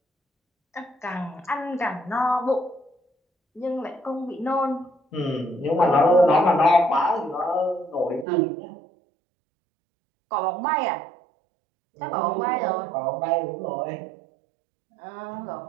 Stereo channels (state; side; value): drops out; left; at 8.2 s